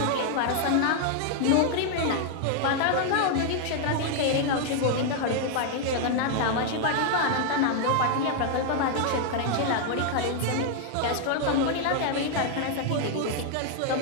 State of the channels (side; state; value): both; different; correlation 0.00